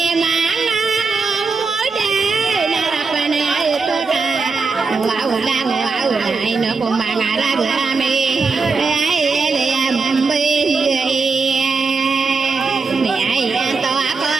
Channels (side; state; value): left; quieter; 4.5 dB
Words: manga moda na rapana ai to ka wow ai no ko manga ra ga me ai ale ambe mi ai to ko